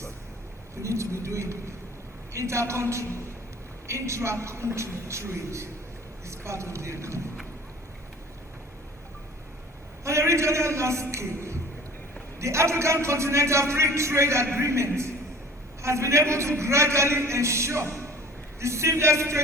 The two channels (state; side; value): normal; both; correlation 0.46